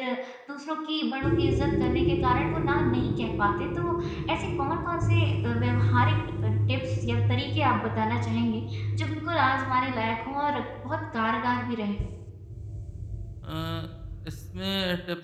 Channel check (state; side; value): identical; both; correlation 1.00